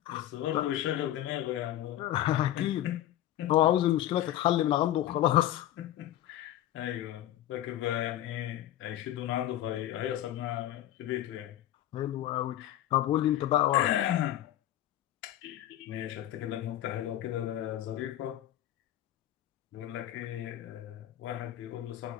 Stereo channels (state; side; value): quieter; right; 13.0 dB